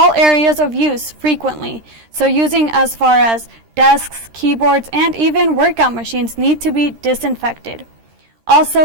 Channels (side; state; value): left; late; 13 ms